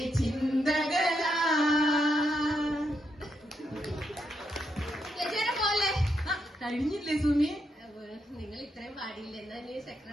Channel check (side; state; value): both; normal; correlation 0.80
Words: ചിന്തകളാ. പോലെ കഴിഞ്ഞില്ലേ സുമി? നിങ്ങൾ ഇത്രയും പാടില്ല. എന്നാ നീ